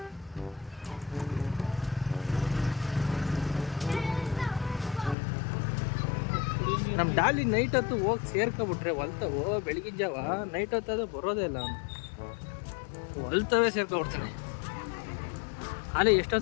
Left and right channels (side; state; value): right; drops out; at 5.2 s